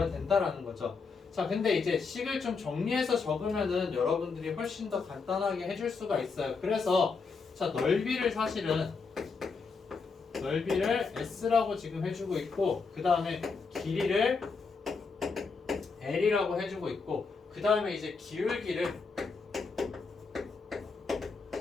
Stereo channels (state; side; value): quieter; right; 4.7 dB